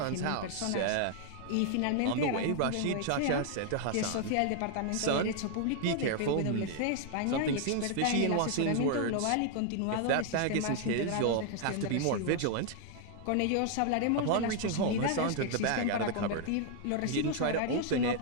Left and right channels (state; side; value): different; both; correlation 0.00